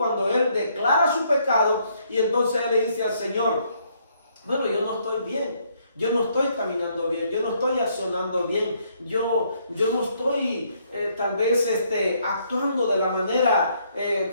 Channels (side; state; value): both; inverted; correlation -0.70